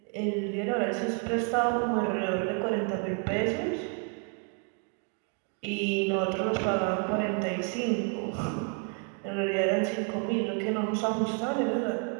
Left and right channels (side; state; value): left; quieter; 39.2 dB